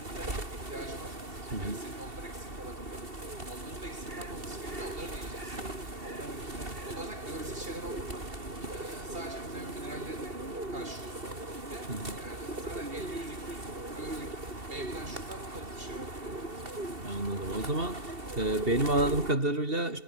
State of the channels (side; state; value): left; late; 2.7 ms